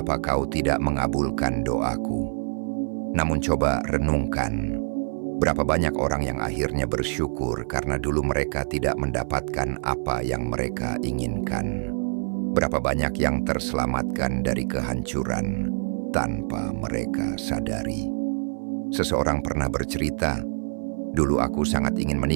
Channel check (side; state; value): left; silent; 58 dB below the other